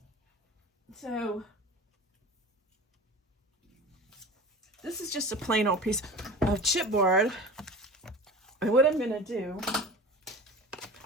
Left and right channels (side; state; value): both; normal; correlation 0.35